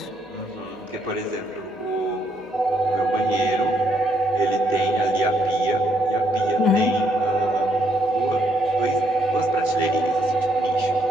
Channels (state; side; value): normal; both; correlation 0.72